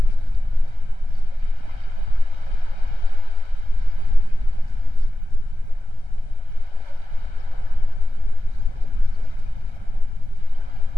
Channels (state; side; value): late; left; 1.3 ms